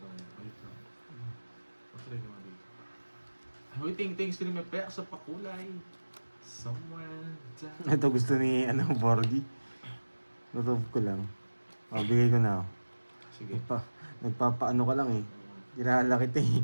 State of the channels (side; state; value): both; inverted; correlation -1.00